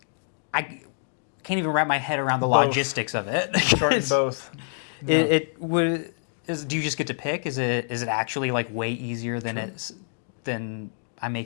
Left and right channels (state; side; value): silent; right; digital silence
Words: can't even wrap my head around the logistics of it. Starting both. Do you just get to pick? Is it actually like way easier than I'm